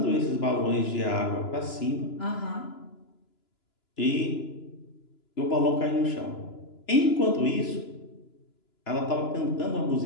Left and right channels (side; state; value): right; late; 2.9 ms